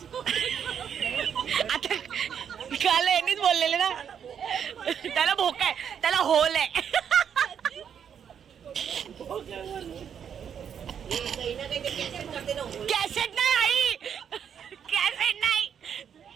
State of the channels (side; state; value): left; quieter; 8.0 dB